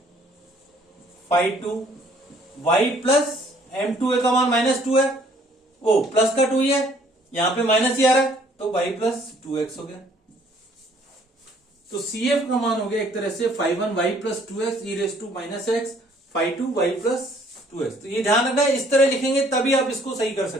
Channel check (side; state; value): both; normal; correlation 0.60